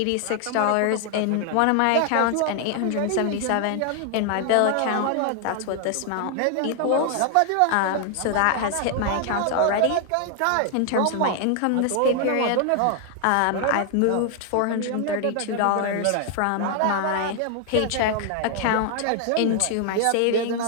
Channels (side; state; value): both; different; correlation 0.00